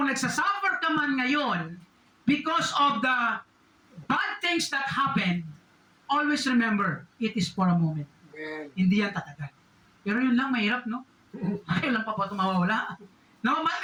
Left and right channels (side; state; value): both; identical; correlation 1.00